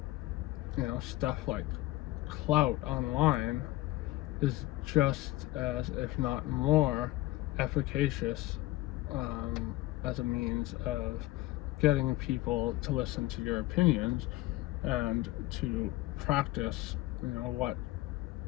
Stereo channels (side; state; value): right; quieter; 18.1 dB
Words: you know, stuff like clout online is just as, if not more, efficacious as a means of getting people to listen to your opinions and to practice, you know, what